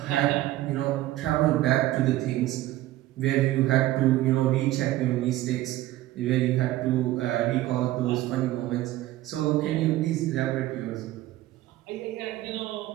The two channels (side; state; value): left; quieter; 15.7 dB